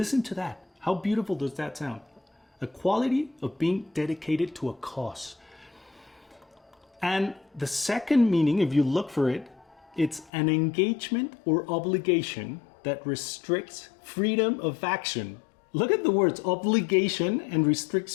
to that. How beautiful does that sound? A quality of being dedicated to a cause. And the second meaning, if you look for it, it's an engagement or obligation that restricts freedom of action. Look at the words, obligation and restricts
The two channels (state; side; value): drops out; right; at 10.3 s